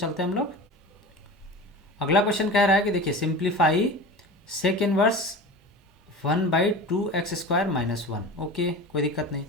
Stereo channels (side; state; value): both; normal; correlation 0.33